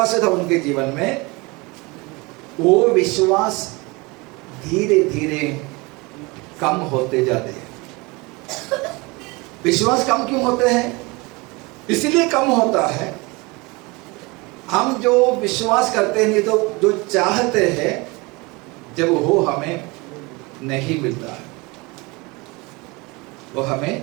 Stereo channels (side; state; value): left; quieter; 25.5 dB